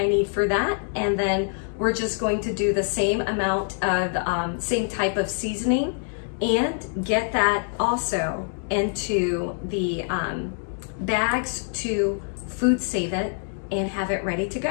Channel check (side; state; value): right; silent; 62 dB below the other